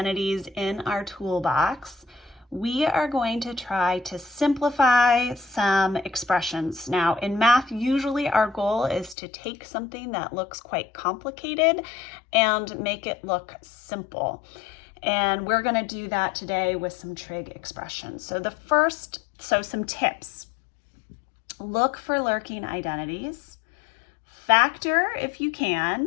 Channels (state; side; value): drops out; right; at 9.2 s